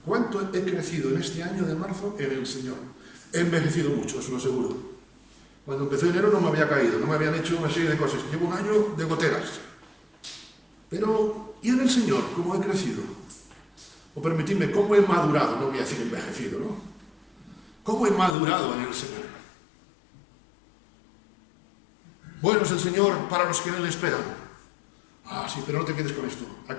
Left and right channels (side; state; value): right; drops out; at 18.4 s